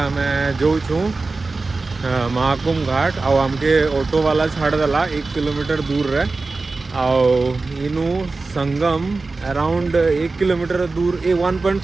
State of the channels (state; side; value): quieter; left; 3.7 dB